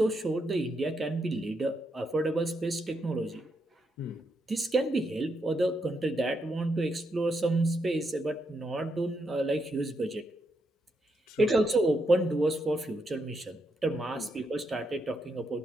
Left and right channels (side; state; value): both; normal; correlation 0.81